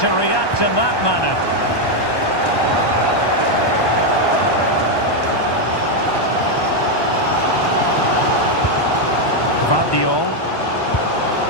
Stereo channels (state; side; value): late; right; 1.2 ms